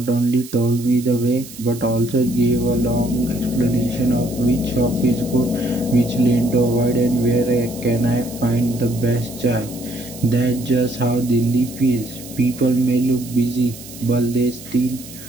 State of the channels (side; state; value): right; noise; hiss, 16 dB below the sound